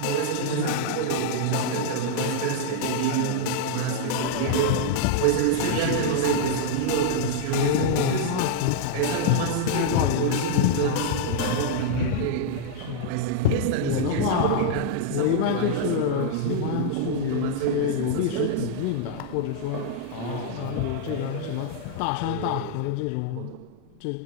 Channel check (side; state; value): both; different; correlation -0.01